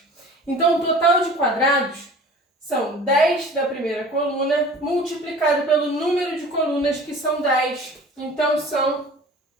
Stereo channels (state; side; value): normal; both; correlation 0.43